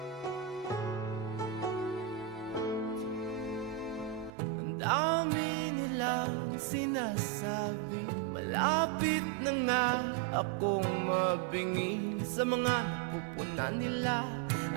dami nilang sinasabi, malapit na nga akong mabingi sa mga napupunan nila.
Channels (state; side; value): drops out; left; at 4.3 s